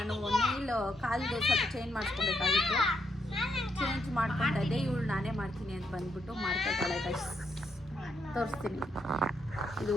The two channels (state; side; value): normal; both; correlation 0.78